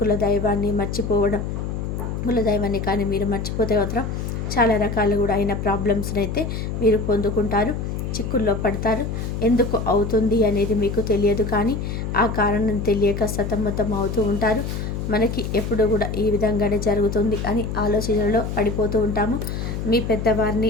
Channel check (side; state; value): left; noise; hum, 4 dB below the sound